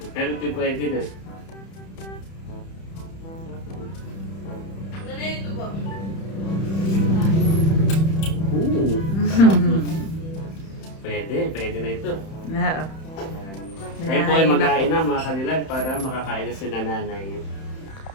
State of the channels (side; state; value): right; late; 31 ms